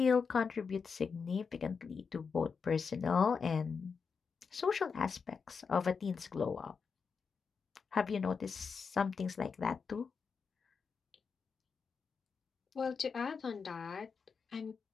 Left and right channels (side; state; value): right; quieter; 5.6 dB